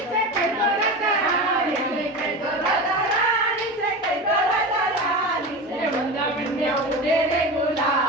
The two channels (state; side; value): normal; both; correlation 0.27